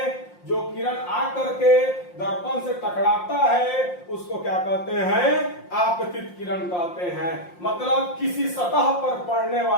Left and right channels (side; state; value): right; late; 5.7 ms